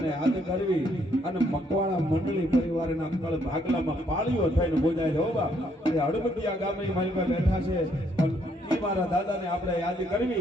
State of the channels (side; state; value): both; normal; correlation 0.70